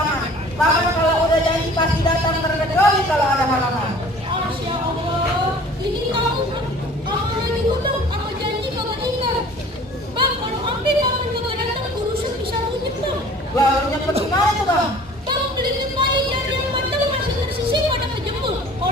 Bahkan kalau udah janji pasti datang terkecuali kalau ada halangan. Masya Allah, ini kamu lagi ngundang apa janji kagak ingat. Bang, kalau ambil kapan kagak datang urusan bisa runyet, Bang. Lah, runyet gimana tuh, Bang? Bang, beli pemain dari yang mandang masih tersisih pada kejemur.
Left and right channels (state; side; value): normal; both; correlation 0.48